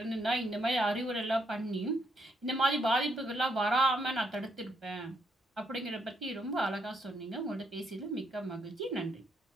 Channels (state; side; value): normal; both; correlation 0.76